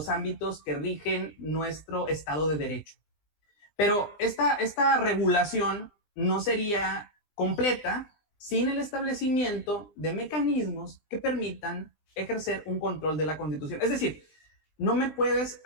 ámbitos que rigen nuestro Estado de Derecho. Pero esta regulación no sería completa sin el establecimiento de mecanismos que permitan ejercer un control de la Constitución. Es decir, no me puedes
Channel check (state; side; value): late; right; 20 ms